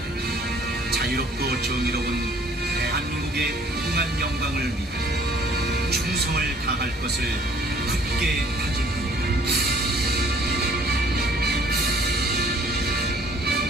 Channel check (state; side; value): normal; both; correlation 0.56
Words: 자유롭고 정의로운 대한민국의 무궁한 영광을 위해 충성을 다할 것을 굳게 다짐합니다.